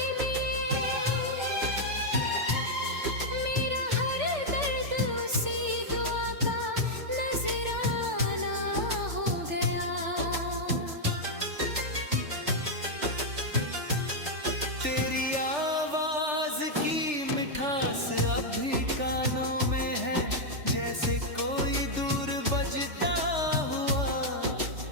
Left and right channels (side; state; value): left; late; 3.4 ms